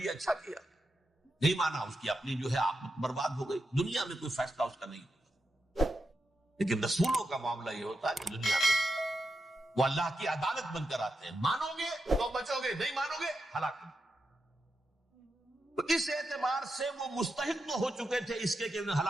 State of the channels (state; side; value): normal; both; correlation 0.87